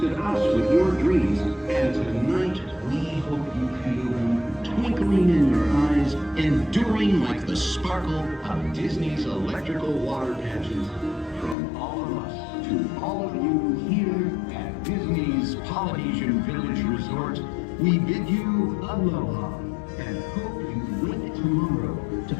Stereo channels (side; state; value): right; drops out; at 11.6 s